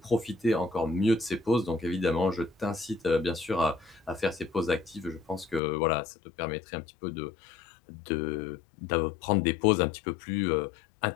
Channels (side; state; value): right; drops out; at 5.6 s